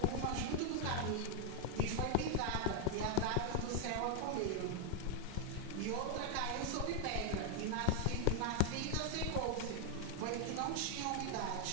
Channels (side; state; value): both; different; correlation 0.00